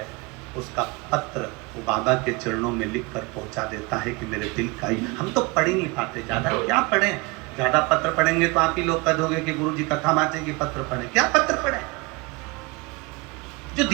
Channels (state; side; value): quieter; left; 25.8 dB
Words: उसका पत्र वो बाबा के चरणों में लिख कर पहुंचा देता है कि मेरे दिल का ही। हम तो पढ़ ही नहीं पाते, ज़्यादा क्या पढ़ें, ज़्यादा पत्र पढ़ेंगे तो आप ही लोग कह दोगे कि गुरुजी कथा बांटेंगे, पत्र पढ़ें। क्या पत्र पढ़ें, जो